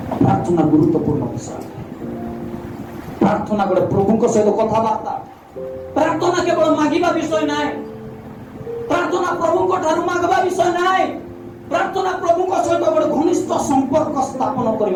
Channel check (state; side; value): identical; both; correlation 1.00